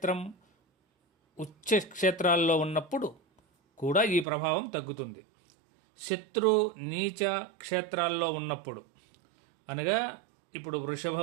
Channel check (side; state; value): left; drops out; at 4.2 s